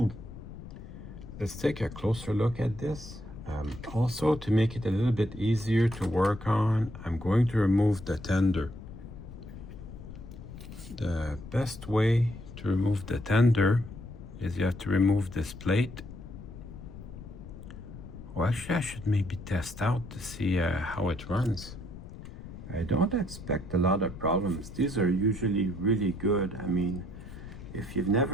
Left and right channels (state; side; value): noise; left; rumble, 13 dB below the sound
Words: Let's take a closer look at this. Also, to make it a little bit easier to work on, I'm going to remove the tender. The best way to remove the tender is you have to remove this plate. Well, actually I should maybe test out to see how it runs. I don't expect a lot of problems. These are usually really good. I mean, if you've